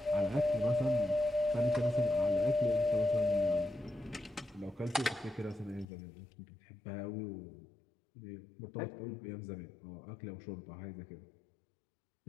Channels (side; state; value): right; drops out; at 5.9 s